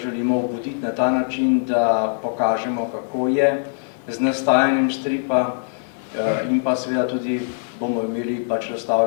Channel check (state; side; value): silent; right; 60 dB below the other